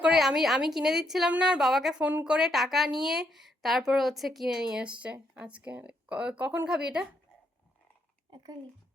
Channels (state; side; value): normal; both; correlation 0.75